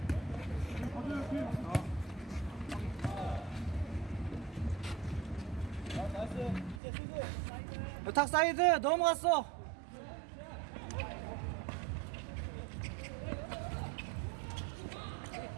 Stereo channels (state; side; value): drops out; left; at 6.8 s